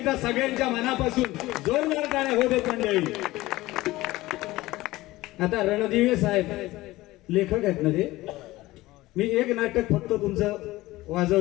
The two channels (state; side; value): quieter; right; 18.3 dB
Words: सगळ्यांच्या मनापासून जोरदार टाळ्या होते मंडळी. आता रणदिवे साहेब लेखक आहेत ना ते. मी एक नाटक फक्त तुमचं